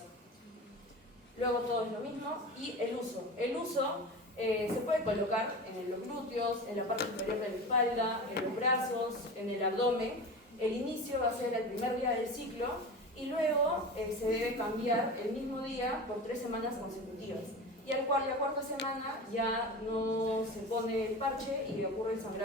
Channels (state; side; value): normal; both; correlation 0.30